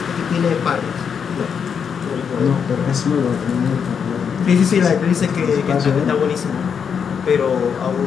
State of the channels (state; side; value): quieter; right; 6.9 dB